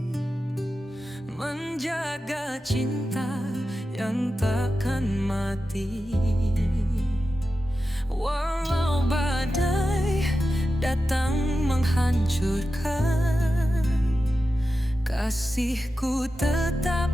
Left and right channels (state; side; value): normal; both; correlation 0.92